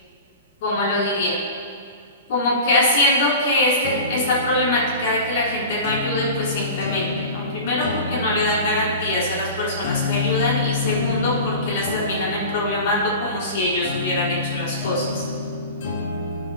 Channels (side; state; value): both; inverted; correlation -0.34